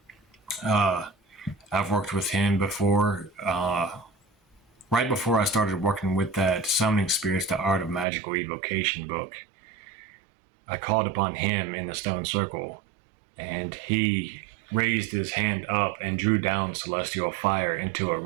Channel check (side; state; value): left; drops out; at 8.1 s